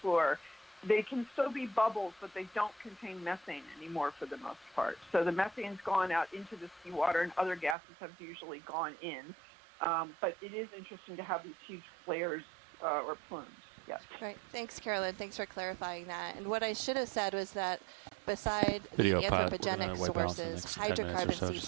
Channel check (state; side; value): drops out; left; at 7.8 s